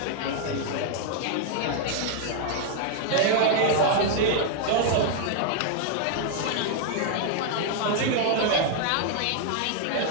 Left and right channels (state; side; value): different; both; correlation -0.01